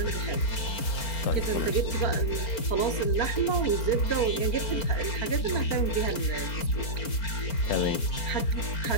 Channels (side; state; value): right; late; 4.4 ms